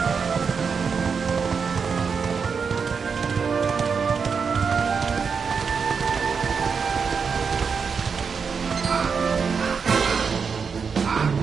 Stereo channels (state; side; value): quieter; left; 5.8 dB